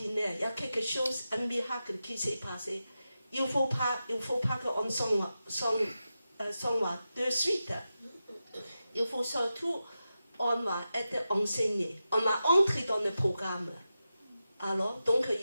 Il y a quelque chose, un miracle qui s'est passé. Il ne faut pas qu'on s'en va de suite. Il faut surtout, on va être enseigné. On va entrer dans le programme. Alors, donc,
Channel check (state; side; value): inverted; both; correlation -0.91